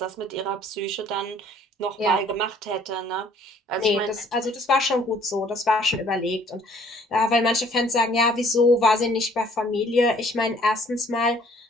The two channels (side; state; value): both; normal; correlation 0.58